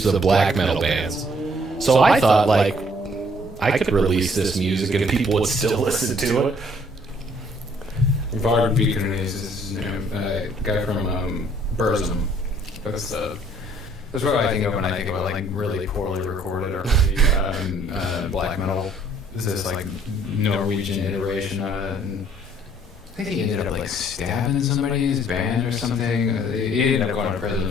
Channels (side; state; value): both; normal; correlation 0.61